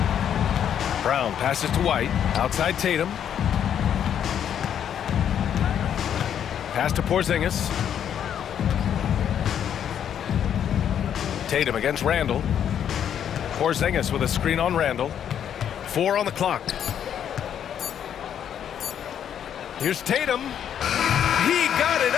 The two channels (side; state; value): right; quieter; 9.2 dB